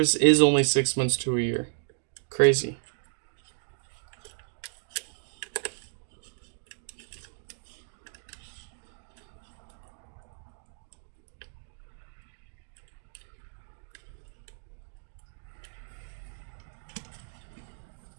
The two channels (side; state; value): left; silent; digital silence